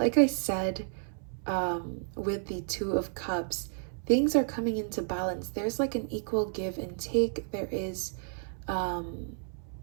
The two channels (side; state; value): left; silent; 57 dB below the other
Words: I said, with the Two of Cups, things are coming into balance. There's like an equal give and take. There is,